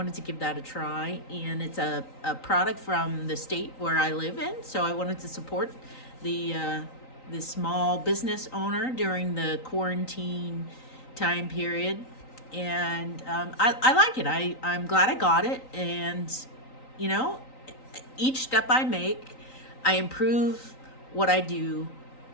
to give that a try. And it's a product from the state where I live in, so I wanted to support the small business owner during the quarantine time period. And I like it. I'm glad I got it. And you know, each step I make, I improve what I do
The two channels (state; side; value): late; right; 3.9 ms